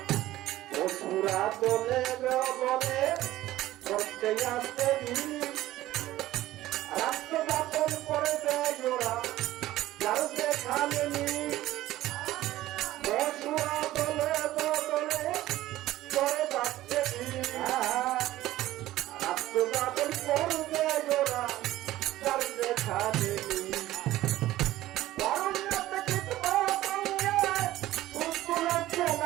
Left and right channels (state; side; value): quieter; left; 15.5 dB